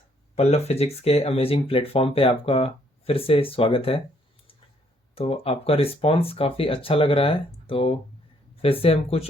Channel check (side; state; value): both; normal; correlation 0.67